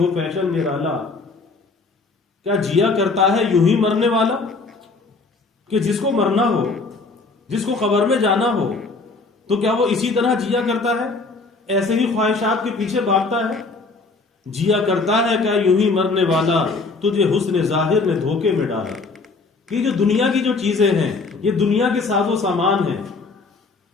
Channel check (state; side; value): quieter; right; 3.9 dB